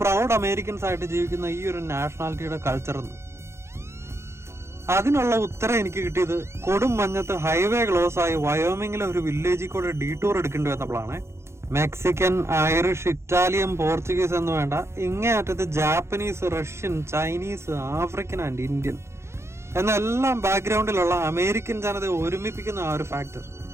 പ്രൗഡ് അമേരിക്കൻസ് ആയിട്ട് ജീവിക്കുന്ന ഈ ഒരു നാഷണാലിറ്റിയുടെ കൾച്ചർ എന്ന്. അതിനുള്ള ഉത്തരം എനിക്ക് കിട്ടിയത് കൊടും മഞ്ഞത്ത് ഹൈവേ ക്ലോസ് ആയി വയോമിങ്ങിലെ ഒരു വില്ലേജിൽ കൂടെ ഡീടൂർ എടുക്കേണ്ടി വന്നപ്പോഴാണ്. മെക്സിക്കൻ, ഐറിഷ്, ഇറ്റാലിയൻ, പോർച്ചുഗീസ് എന്ന് വേണ്ട, ഇങ്ങേയറ്റത്ത് Japanese, Russian, Chinese, African and Indian എന്നെല്ലാം ബാക്ക്ഗ്രൗണ്ടിലുള്ള അമേരിക്കൻ ജനതയെ ഒരുമിപ്പിക്കുന്ന ആ ഒരു factor.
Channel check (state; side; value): late; left; 0.13 ms